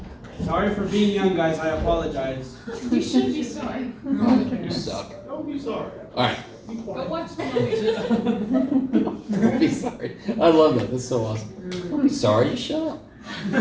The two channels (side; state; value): both; identical; correlation 1.00